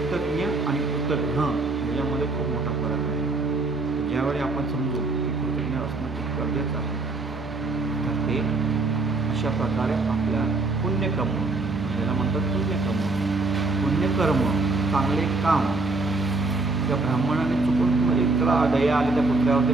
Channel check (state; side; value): quieter; left; 3.4 dB